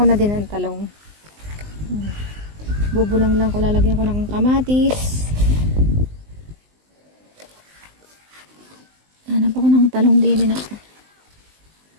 na din ng talong. Bubulang lang ko, lalagyan ko ng kamatis. Hanap ako ng talong din na.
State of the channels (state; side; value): late; left; 19 ms